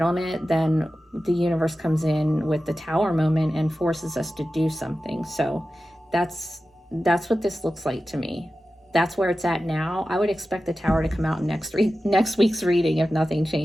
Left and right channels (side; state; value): both; normal; correlation 0.94